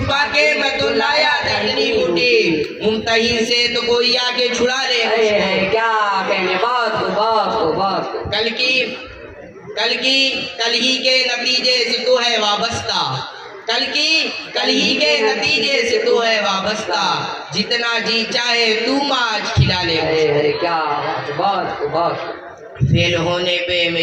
के मैं तो लाया था इतनी बूटी, मुमतहिन से तो कोई आके छुड़ा ले। क्या कहने, बहुत। कल ही के नतीजे से तो है वाबस्ता, कल ही के नतीजे से तो है वाबस्ता, जितना जी चाहे तू आज खिला ले। अरे क्या बहुत। फेल होने पे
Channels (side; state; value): both; identical; correlation 1.00